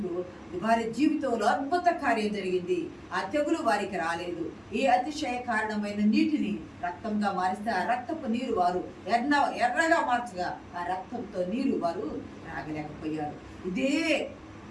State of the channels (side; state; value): both; identical; correlation 1.00